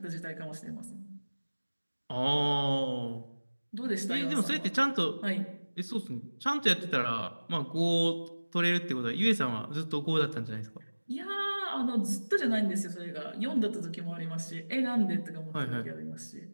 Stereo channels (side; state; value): both; inverted; correlation -1.00